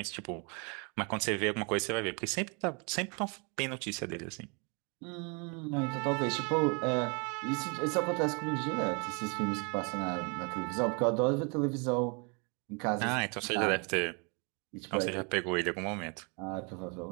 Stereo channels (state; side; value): quieter; left; 33.7 dB